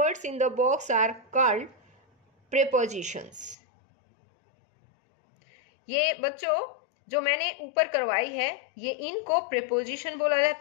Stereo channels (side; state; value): right; drops out; at 3.6 s